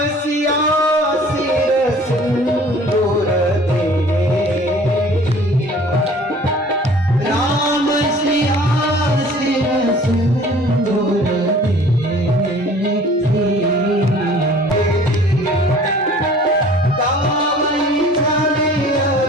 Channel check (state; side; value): normal; both; correlation 0.49